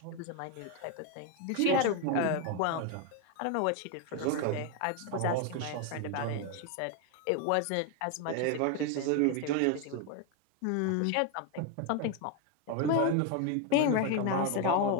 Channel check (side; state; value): both; different; correlation 0.02